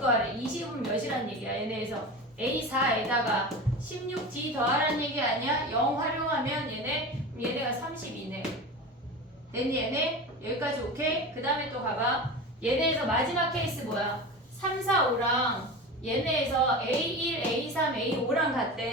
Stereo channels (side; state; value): both; normal; correlation 0.29